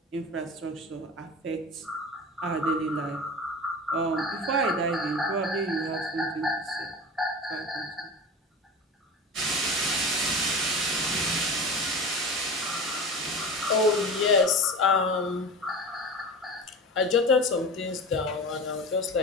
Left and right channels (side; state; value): both; normal; correlation 0.32